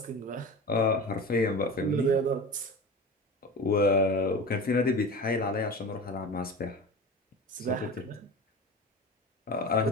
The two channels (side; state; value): both; normal; correlation 0.31